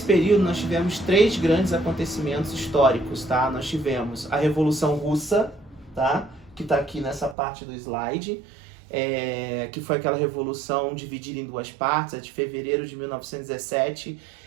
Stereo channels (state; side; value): drops out; left; at 7.4 s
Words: período nós tivemos três grandes acontecimentos históricos, tá? Nós tivemos a Revolução Russa, tá? Que está aqui nessa parte do slide, que foi aquela revolução dividida em duas partes, a de fevereiro de 1917,